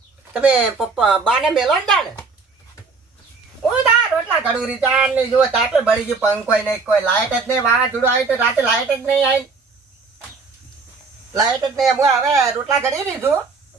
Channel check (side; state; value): left; quieter; 4.4 dB